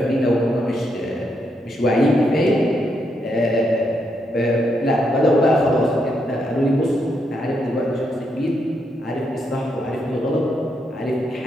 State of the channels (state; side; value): normal; both; correlation 0.79